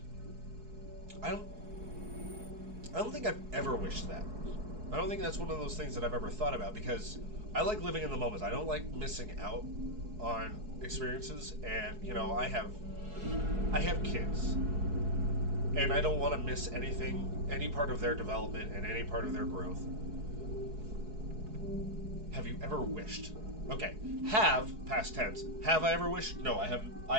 I don't think I've ever wished that. I don't think that's one of those things that I've ever thought about because I like living in the moment. I don't like missing out on experiences, and I have kids, and I don't want to miss anything, any part of their development and any part of their growth. Have you ever wished? Okay, have, past tense. Have I ever wished? No, I have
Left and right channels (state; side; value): late; left; 4.7 ms